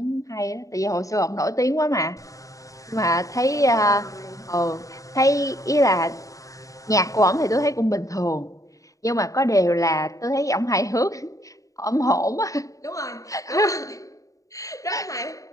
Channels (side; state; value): right; late; 0.16 ms